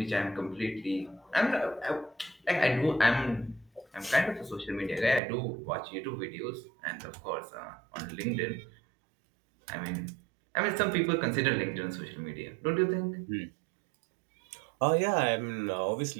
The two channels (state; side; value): drops out; left; at 5.2 s